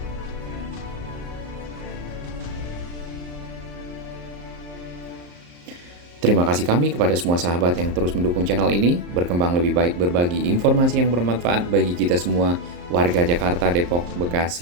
Terima kasih kami kepada semua sahabat yang terus mendukung channel ini, berkembang lebih baik, berbagi informasi yang bermanfaat bagi kita semua, warga Jakarta, Depok,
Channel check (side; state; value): left; late; 34 ms